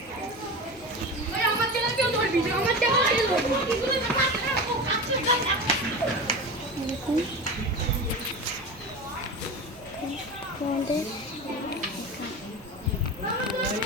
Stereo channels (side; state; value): both; normal; correlation 0.27